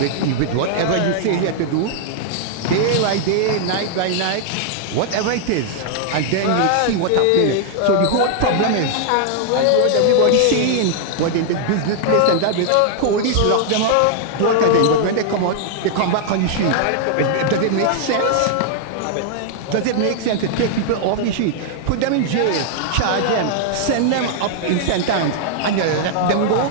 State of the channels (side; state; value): both; different; correlation -0.01